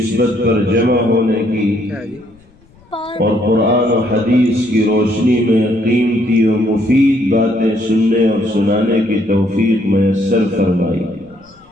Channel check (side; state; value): left; noise; rumble, 29 dB below the sound